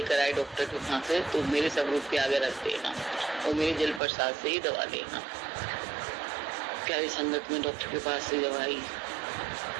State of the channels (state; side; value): drops out; left; at 4.0 s